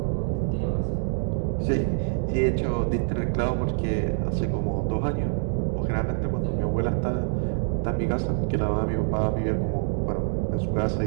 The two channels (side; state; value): left; silent; 61 dB below the other